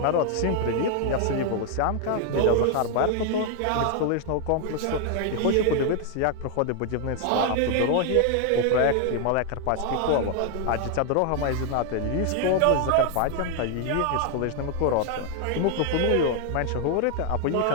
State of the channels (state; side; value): different; both; correlation 0.00